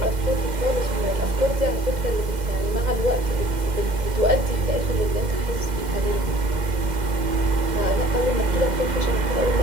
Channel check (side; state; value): left; late; 2.1 ms